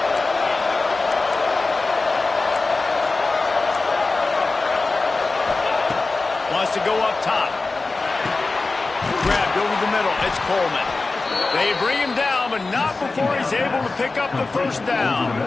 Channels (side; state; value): right; quieter; 3.6 dB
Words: Wants to go up top. Grabbed over the middle. It's Coleman. They bring him down, but not before he's able to pick up the first down.